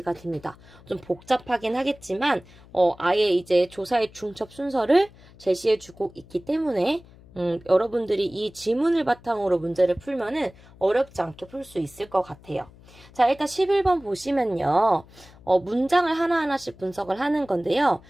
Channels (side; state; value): left; noise; hum, 23 dB below the sound